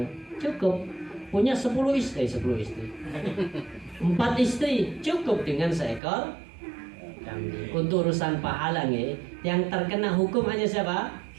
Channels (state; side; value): drops out; left; at 6.0 s